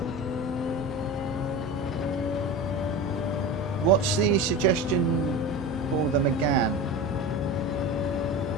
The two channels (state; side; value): normal; both; correlation 0.28